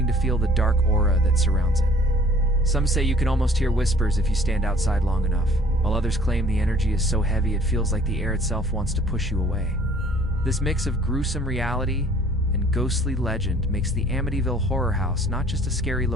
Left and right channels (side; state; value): both; normal; correlation 0.54